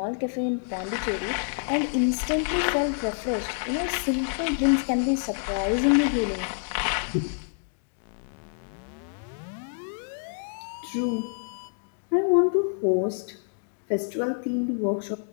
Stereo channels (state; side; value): silent; right; digital silence